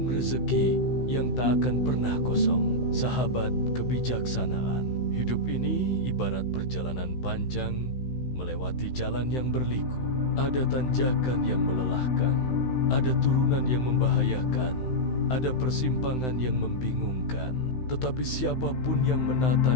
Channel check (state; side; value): late; right; 16 ms